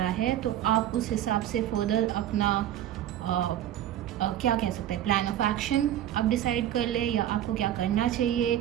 है तो आप उस हिसाब से फर्दर अपना क्या कह सकते हैं प्लान ऑफ एक्शन आप डिसाइड कर लें, या आपको क्या करना चाहिए,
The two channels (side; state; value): left; quieter; 11.8 dB